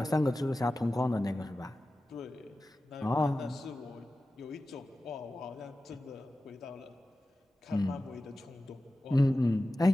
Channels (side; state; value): both; normal; correlation 0.94